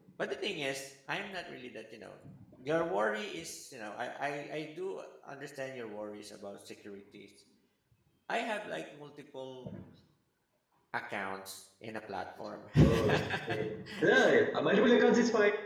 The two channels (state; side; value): identical; both; correlation 1.00